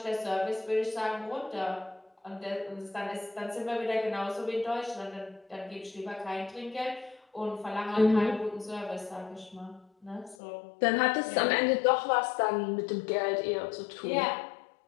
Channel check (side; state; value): right; drops out; at 10.4 s